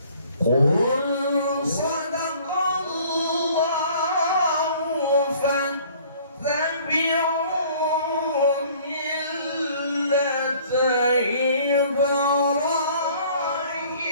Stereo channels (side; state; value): both; inverted; correlation -0.54